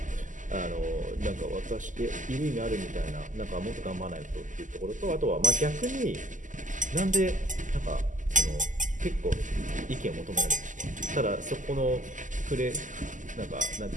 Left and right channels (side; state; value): left; late; 0.37 ms